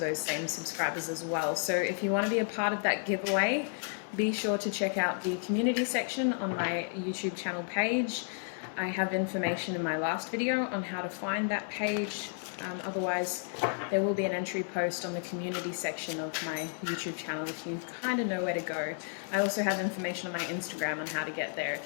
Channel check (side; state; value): right; silent; 56 dB below the other